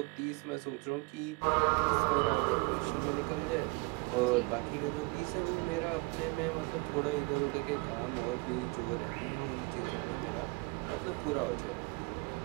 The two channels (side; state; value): left; quieter; 27.7 dB